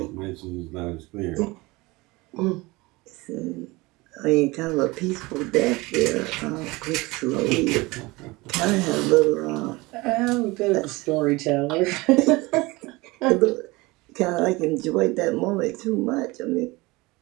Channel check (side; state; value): left; quieter; 22.7 dB